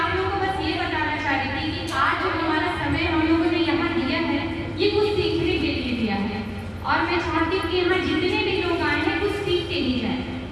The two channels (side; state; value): both; identical; correlation 1.00